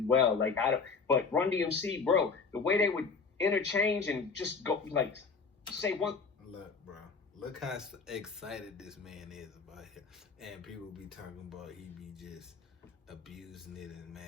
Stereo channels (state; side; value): quieter; right; 4.9 dB